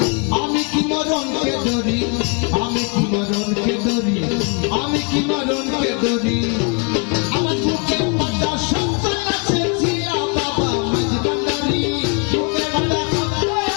কি মরণকে ধরি, আমি কি মরণকে ধরি, আমি কি মরণকে ধরি। আমার বুকের পাতা সন্তান আছে জিয়া বাবা মাঝ ভান্ডারি, বুকের পাতা সন্তান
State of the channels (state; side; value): quieter; right; 34.6 dB